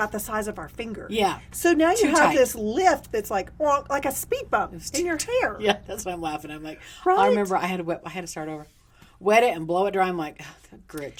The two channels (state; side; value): identical; both; correlation 1.00